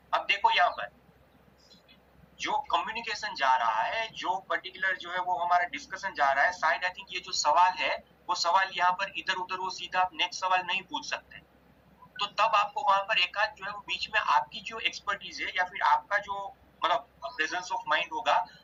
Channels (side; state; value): both; identical; correlation 1.00